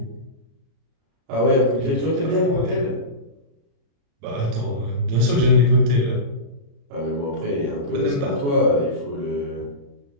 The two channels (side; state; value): left; late; 35 ms